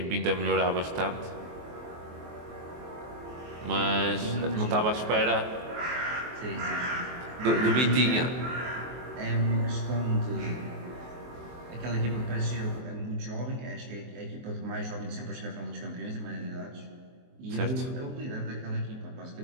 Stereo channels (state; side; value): late; left; 23 ms